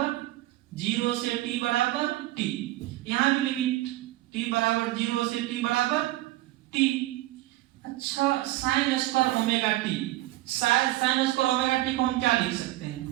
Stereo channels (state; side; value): quieter; left; 17.3 dB